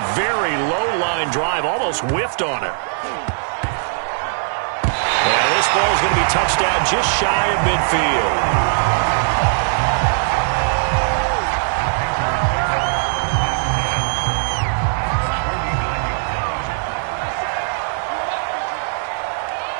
very low-line drive, almost whiffed on it. And this ball is going to be touched down just shy of midfield.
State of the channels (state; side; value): silent; left; 66 dB below the other